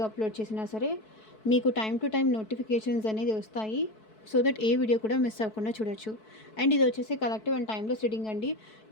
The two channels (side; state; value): right; late; 4.6 ms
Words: అప్లోడ్ చేసినా సరే మీకు టైం టు టైం నోటిఫికేషన్స్ అనేది వస్తాయి. సో దట్ ఏ వీడియో కూడా మిస్ అవ్వకుండా చూడొచ్చు. అండ్ ఇది వచ్చేసి కలెక్టివ్ అండ్ టైమ్లెస్ రీడింగ్ అండి.